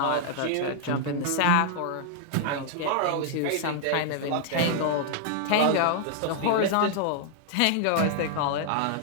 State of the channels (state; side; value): different; both; correlation -0.01